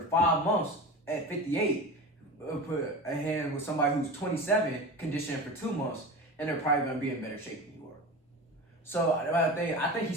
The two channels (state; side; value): normal; both; correlation 0.30